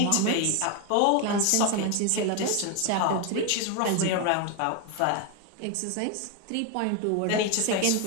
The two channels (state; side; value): different; both; correlation 0.01